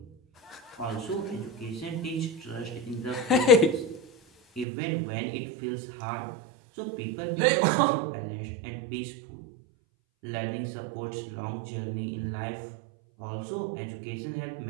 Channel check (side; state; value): left; drops out; at 4.7 s